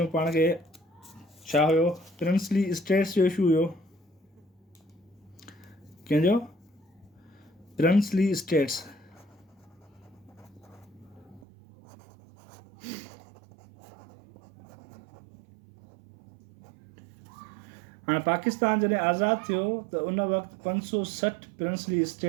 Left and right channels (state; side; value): drops out; left; at 11.5 s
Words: पाण खे छा हुयो, प्रिंसली स्टेट्स जो इशू हुयो। कंहिंजो? Princely states. हाणे पाकिस्तान जॾहिं आज़ादु थियो त उन वक़्तु 560 प्रिंसली